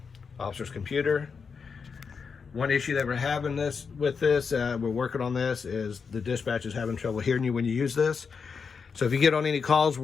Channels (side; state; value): right; quieter; 5.6 dB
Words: officer's computer. One issue that we're having with this, we're working on this, is the dispatch is having trouble hearing you when you use this. So if you get on any calls